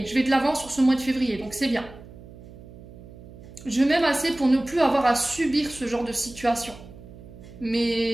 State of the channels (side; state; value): right; noise; hum, 18 dB below the sound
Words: je vais de l'avant sur ce mois de février. Donc, c'est bien. Je m'aime assez pour ne plus avoir à subir ce genre de situation.